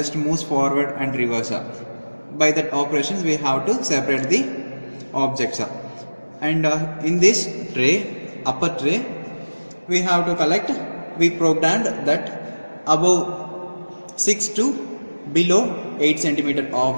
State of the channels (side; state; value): both; inverted; correlation -1.00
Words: moves forward and reverse. By that operations we have to separate the objects. And in this tray, upper tray, we have to collect, we programmed that above 6 to below 8 centimeter